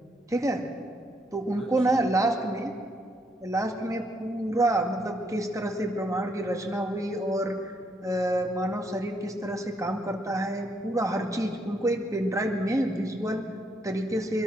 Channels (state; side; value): normal; both; correlation 0.74